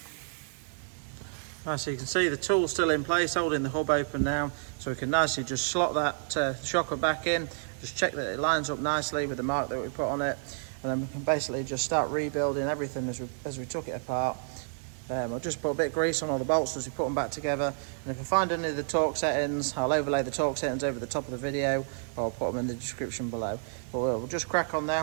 Right, so you can see the tool's still in place, holding the hub open now, so we can nicely just slot that shocker back in, just check that it lines up nicely with the mark that we put on it, and then we can basically just start rebuilding everything as we took it apart. I'll just put a bit of grease on all the bolts as we put them back together, and if I find any of the torque settings, I'll overlay the torque settings over the top of the video, or I'll put them in the description below. But we'll just crack on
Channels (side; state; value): left; silent; digital silence